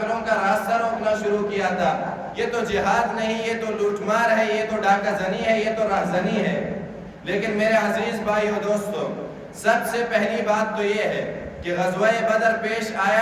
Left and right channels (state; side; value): identical; both; correlation 1.00